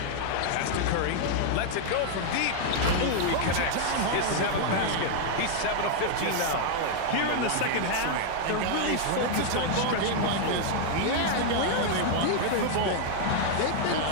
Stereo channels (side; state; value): both; different; correlation 0.00